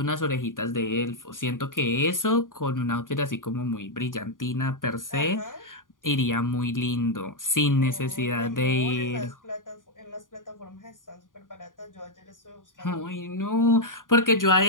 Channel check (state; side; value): late; right; 0.89 ms